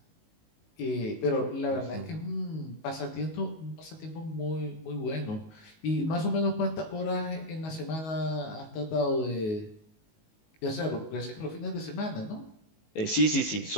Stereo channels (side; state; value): right; late; 19 ms